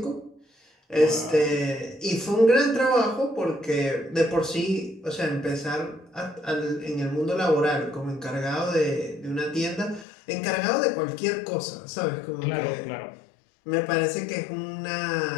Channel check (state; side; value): drops out; right; at 10.1 s